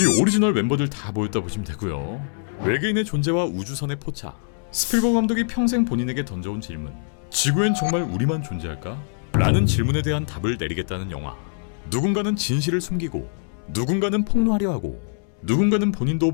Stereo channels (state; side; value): silent; right; 59 dB below the other